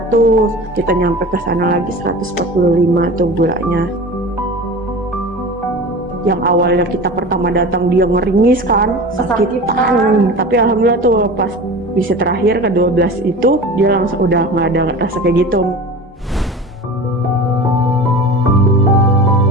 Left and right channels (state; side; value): normal; both; correlation 0.34